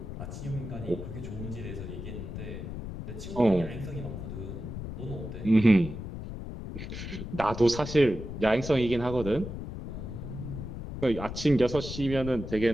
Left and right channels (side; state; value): left; noise; rumble, 8 dB below the sound